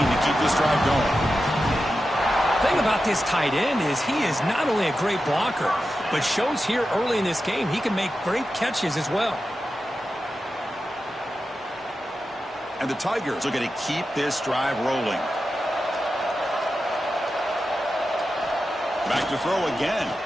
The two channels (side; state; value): both; normal; correlation 0.91